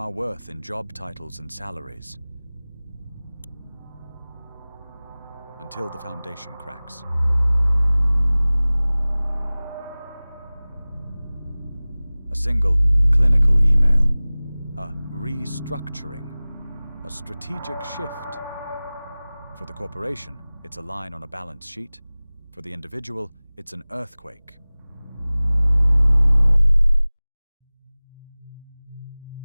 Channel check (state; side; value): inverted; both; correlation -0.99